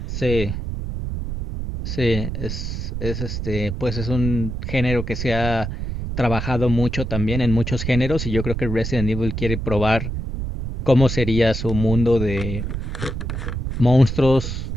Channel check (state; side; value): noise; right; rumble, 4 dB below the sound